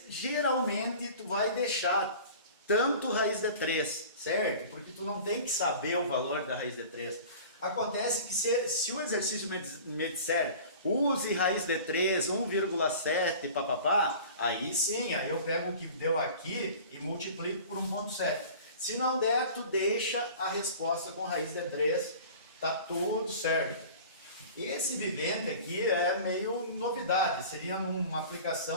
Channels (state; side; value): inverted; both; correlation -0.41